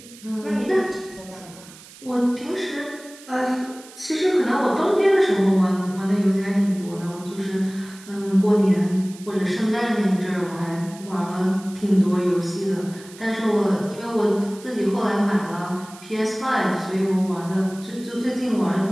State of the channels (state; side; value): noise; right; hiss, 20 dB below the sound